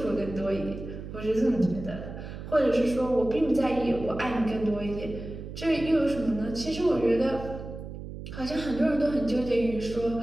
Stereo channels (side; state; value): right; noise; hum, 10 dB below the sound